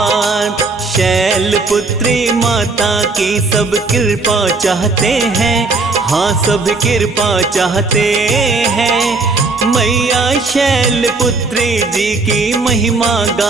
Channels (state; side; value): quieter; left; 3.7 dB